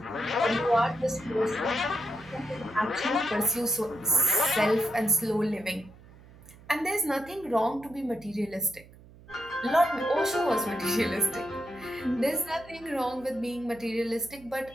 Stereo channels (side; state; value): right; noise; hum, 22 dB below the sound